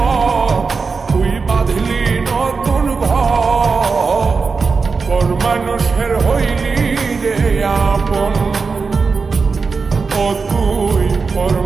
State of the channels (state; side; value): quieter; left; 4.7 dB